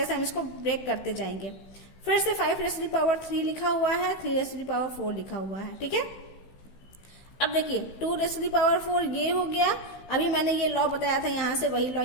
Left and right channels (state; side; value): late; right; 16 ms